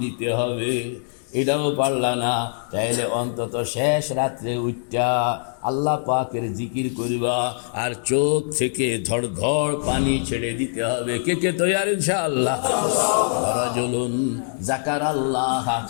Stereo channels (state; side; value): silent; right; 63 dB below the other